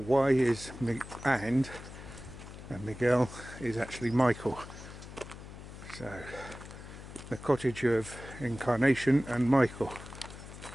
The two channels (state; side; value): noise; left; hum, 14 dB below the sound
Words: is and Miguel is actually Michael. So, the cottage of Incarnation and Michael.